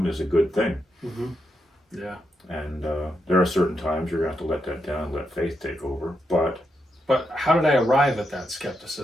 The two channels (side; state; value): both; normal; correlation 0.83